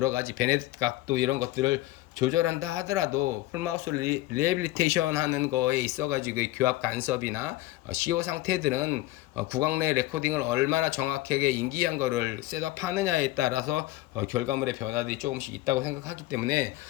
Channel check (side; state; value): right; quieter; 16.9 dB